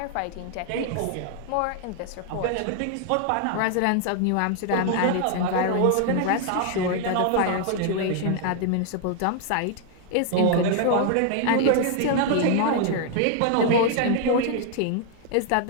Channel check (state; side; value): different; both; correlation 0.00